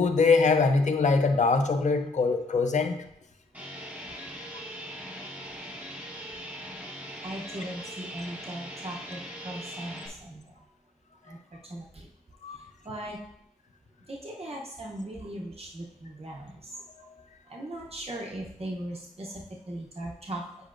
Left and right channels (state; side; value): quieter; right; 3.2 dB